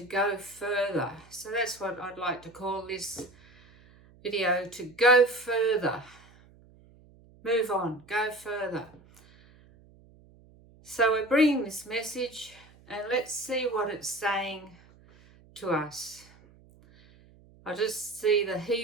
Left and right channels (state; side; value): noise; right; hum, 26 dB below the sound